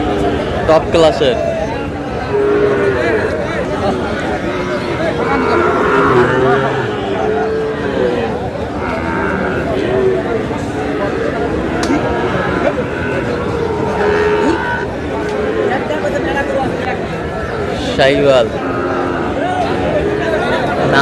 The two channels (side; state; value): both; identical; correlation 1.00